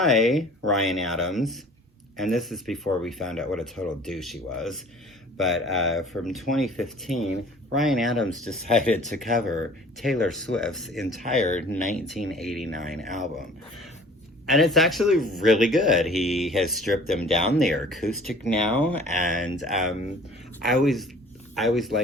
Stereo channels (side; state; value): both; normal; correlation 0.48